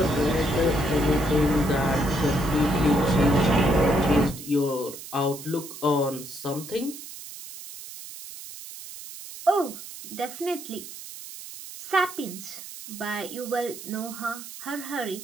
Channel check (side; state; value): right; noise; hiss, 13 dB below the sound